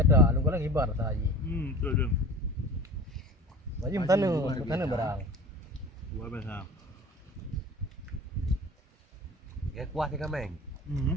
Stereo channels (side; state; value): both; normal; correlation 0.38